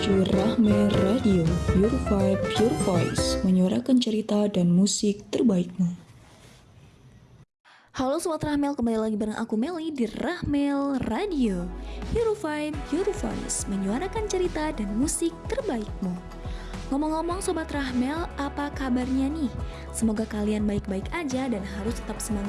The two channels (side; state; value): both; identical; correlation 1.00